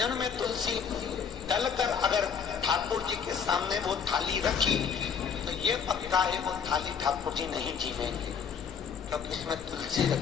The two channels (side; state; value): right; quieter; 6.7 dB